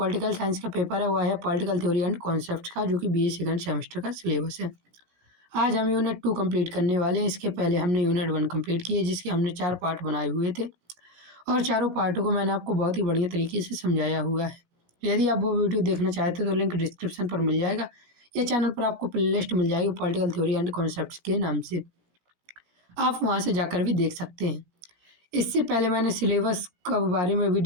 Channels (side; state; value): left; late; 17 ms